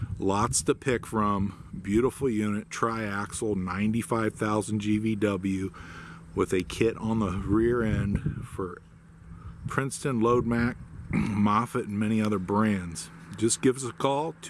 Lots to pick from. Beautiful unit, triaxle, 95,000 GVW with a kit on the rear end for Princeton, Load Mac, Moffett, and many other brands. Just give us a call,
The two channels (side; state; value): both; identical; correlation 1.00